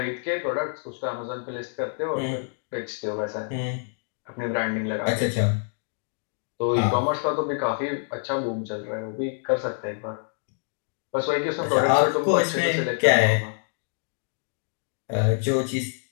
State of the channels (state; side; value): silent; right; digital silence